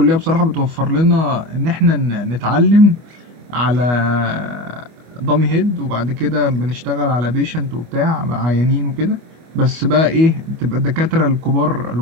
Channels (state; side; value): late; left; 25 ms